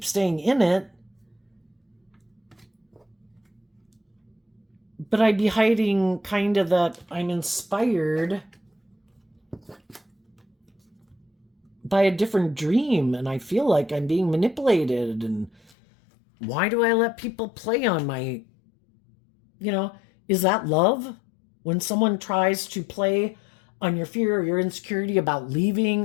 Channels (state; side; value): drops out; right; at 15.7 s